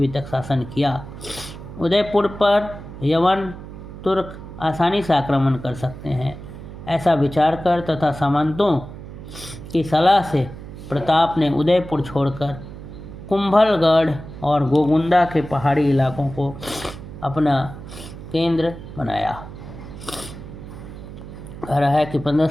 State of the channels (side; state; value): right; noise; hum, 13 dB below the sound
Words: तक शासन किया। उदयपुर पर यवन तुर्क आसानी से आक्रमण कर सकते हैं, ऐसा विचार कर तथा सामंतों की सलाह से प्रताप ने उदयपुर छोड़कर कुंभलगढ़ और गोगुंदा के पहाड़ी इलाकों को अपना केंद्र बनाया। कह रहा है कि